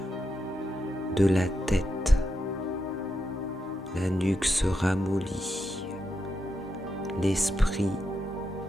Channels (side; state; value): both; normal; correlation 0.85